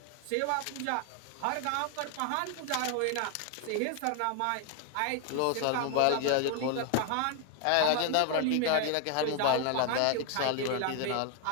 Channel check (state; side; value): different; both; correlation 0.00